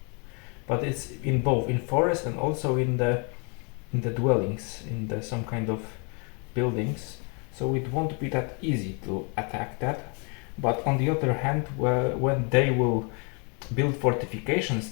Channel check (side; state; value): right; quieter; 35.2 dB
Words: but it's in both in forest and also in the dwellings, in the some kind of buildings, so it won't be that easy to attack that. But on the other hand, when they will build fortifications